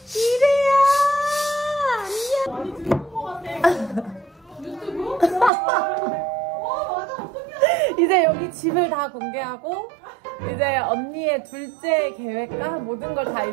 이래야. 이제 여기 집을 다 공개하고 이제 언니의 둘째 계획과 모든 걸 다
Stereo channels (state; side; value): drops out; left; at 5.5 s